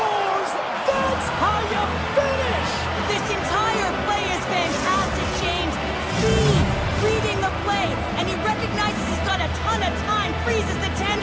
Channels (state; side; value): identical; both; correlation 1.00